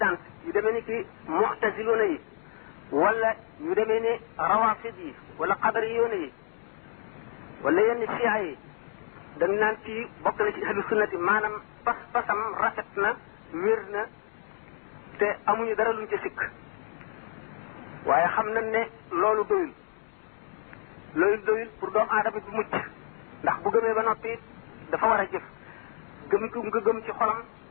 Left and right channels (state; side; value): silent; right; 59 dB below the other